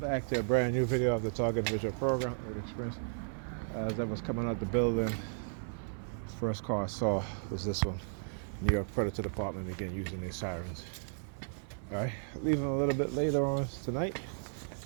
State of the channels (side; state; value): left; silent; 55 dB below the other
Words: to a brand new video of the Target Visual Program with Experience. As I was coming out the building, first car I saw was this one, New York Predator Department, again using their sirens. All right, leaving a little bit later on tonight.